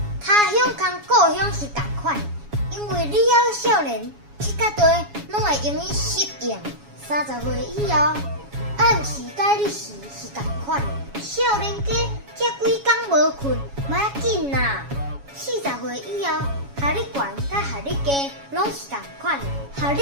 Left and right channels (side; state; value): left; late; 7.2 ms